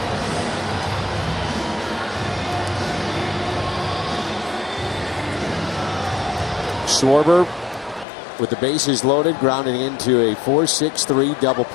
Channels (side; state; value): right; drops out; at 8.1 s